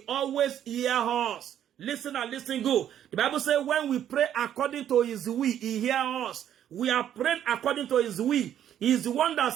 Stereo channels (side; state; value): left; quieter; 10.4 dB